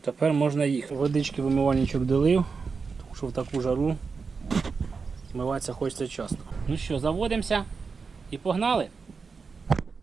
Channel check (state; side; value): quieter; left; 5.0 dB